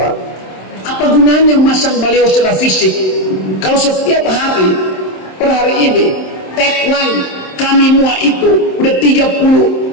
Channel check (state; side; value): late; right; 27 ms